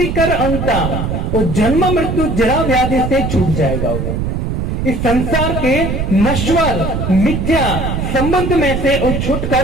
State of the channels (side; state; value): right; noise; rumble, 2 dB below the sound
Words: कर अंता, वो जन्म मृत्यु जरा व्याधि से छूट जाएगा। वो इस संसार के नश्वर मिथ्या संबंध में से वो